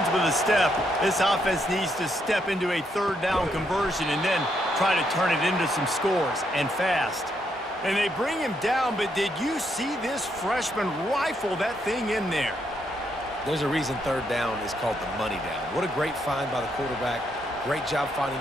with a step, this offense needs to step into a 3rd down conversion and then try to turn it into some scores, and fast. And they bring him down, but did you see this freshman rifle that thing in there? There's a reason 3rd down is called the money down. What a great find by the quarterback. Great job finding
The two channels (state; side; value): normal; both; correlation 0.77